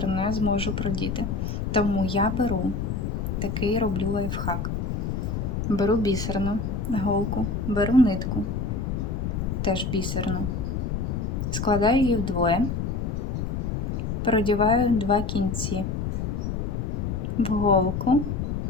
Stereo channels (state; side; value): noise; left; rumble, 2 dB below the sound